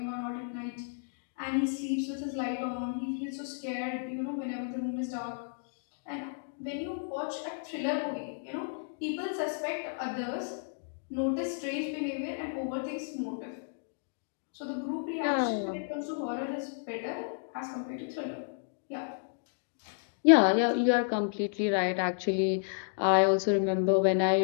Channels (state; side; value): silent; right; digital silence